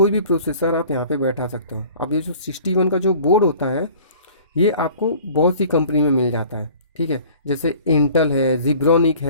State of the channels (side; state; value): both; inverted; correlation -0.48